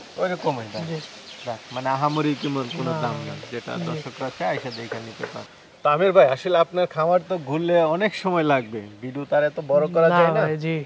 ওইরকমই দাম। জি যাক, মানে আহামরি কেমন কোনো না, দাম না, যেটা জি। দর্শকরা চায় এসে দেখে নিতে পারে। তো আমির ভাই আসলে আপনার খামার তো ঘুরলে অনেক সময় লাগবে, ভিডিও তার এত বড় করা যায় না। ভাই, জি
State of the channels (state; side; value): identical; both; correlation 1.00